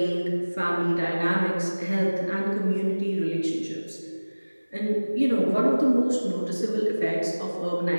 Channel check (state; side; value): inverted; both; correlation -1.00